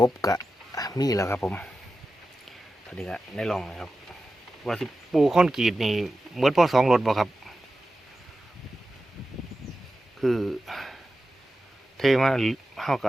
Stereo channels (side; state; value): both; normal; correlation 0.92